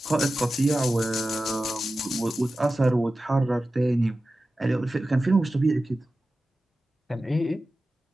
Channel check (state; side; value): normal; both; correlation 0.94